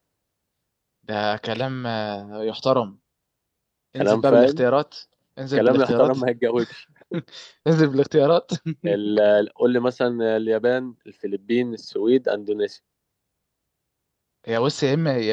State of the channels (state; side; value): identical; both; correlation 1.00